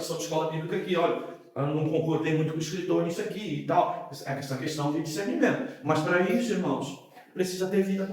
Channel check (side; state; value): both; identical; correlation 1.00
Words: de escola bíblica aqui, olha, eu não concordei muito com o escritor nisso aqui e tal. Essa questão de discernimento. Mas para isso, irmãos, precisa ter vida